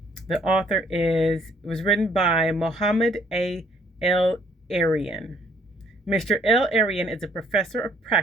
The author was written by Mohamed El-Erian. Mr. El-Erian is a professor of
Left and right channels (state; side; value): normal; both; correlation 0.63